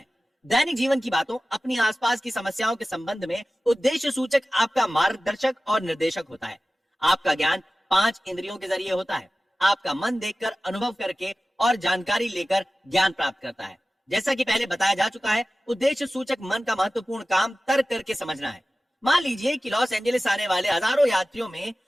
दैनिक जीवन की बातों, अपनी आसपास की समस्याओं के संबंध में उद्देश्य सूचक आपका मार्गदर्शक और निर्देशक होता है। आपका ज्ञान 5 इंद्रियों के जरिए होता है। आपका मन देखकर, अनुभव करके और जानकारी लेकर ज्ञान प्राप्त करता है। जैसा कि पहले बताया जा चुका है, उद्देश्य सूचक मन का महत्वपूर्ण काम तर्क करके समझना है। मान लीजिए कि लॉस एंजलिस आने वाले हजारों यात्रियों में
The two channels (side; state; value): both; normal; correlation 0.96